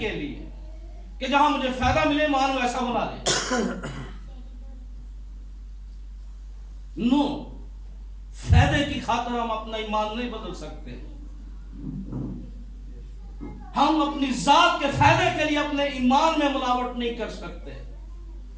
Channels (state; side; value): identical; both; correlation 1.00